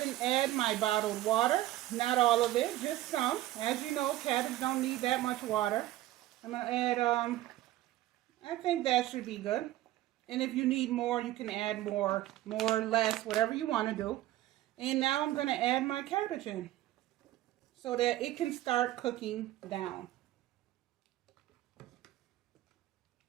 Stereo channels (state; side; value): quieter; left; 15.3 dB